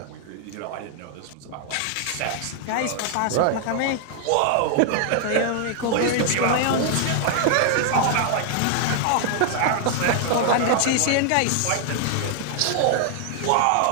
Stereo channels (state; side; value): different; both; correlation 0.00